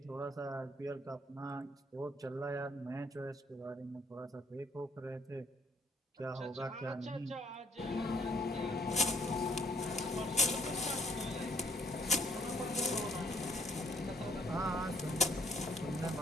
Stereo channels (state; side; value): normal; both; correlation 0.63